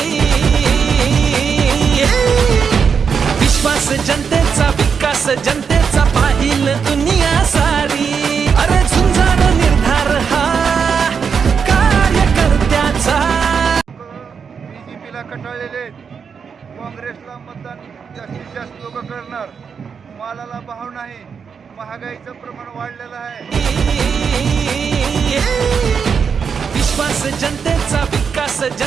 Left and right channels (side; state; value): left; quieter; 6.3 dB